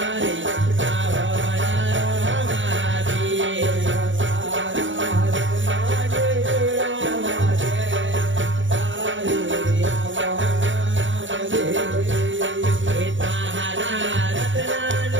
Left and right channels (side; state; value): left; late; 0.55 ms